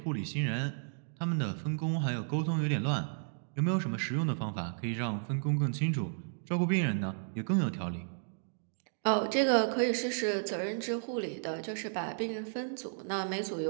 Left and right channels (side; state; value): left; silent; digital silence